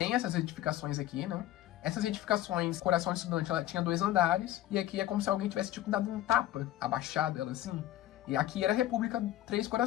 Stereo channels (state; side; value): quieter; right; 13.8 dB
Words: essas edificações aqui, né? Essas edificações, Coração de Estudante, ela tinha 2 andares, e aqui é como se alguém tivesse, tipo, dado um tapa, abaixado ela assim. E aqui era a República Três